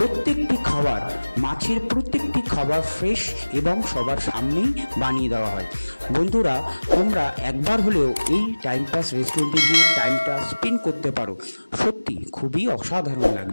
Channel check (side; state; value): both; inverted; correlation -1.00